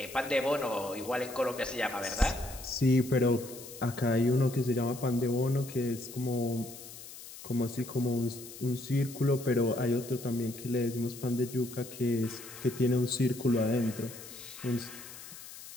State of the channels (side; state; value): left; noise; hiss, 14 dB below the sound